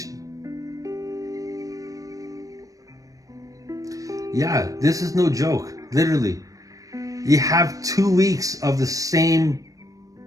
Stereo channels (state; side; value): late; left; 0.16 ms